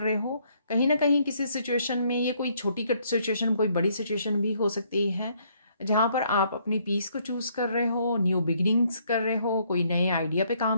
हो। कहीं ना कहीं किसी सिचुएशन में, ये कोई छोटी कट सिचुएशन, कोई बड़ी सिचुएशन भी हो सकती है, जहाँ पर आप अपनी पीस को चूज कर रहे हो, न्यू बिगिनिंग्स कर रहे हो, कोई नए आइडिया पे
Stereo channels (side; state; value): both; inverted; correlation -0.68